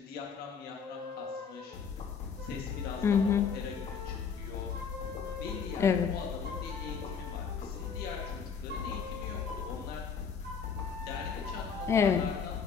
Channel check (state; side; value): quieter; right; 6.3 dB